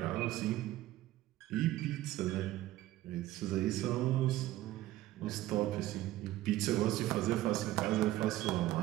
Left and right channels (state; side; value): quieter; left; 15.4 dB